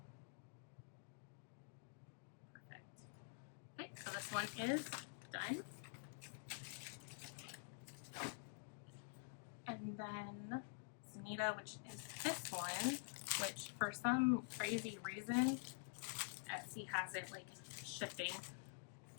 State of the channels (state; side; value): silent; right; digital silence